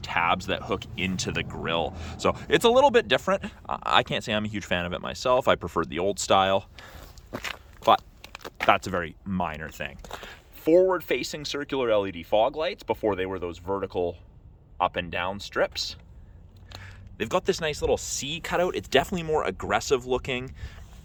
that hook into the grille. So it's a little bit different. I can't say I'm a huge fan of it myself. I preferred the old style, but that's a very minor thing. Forward-facing circular LED fog lights before they were those vertical up and down strips. They've got this nice little C cutout. It's definitely more aggressive looking.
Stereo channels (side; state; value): both; identical; correlation 1.00